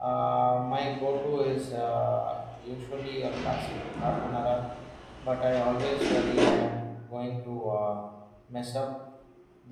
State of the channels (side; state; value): both; identical; correlation 1.00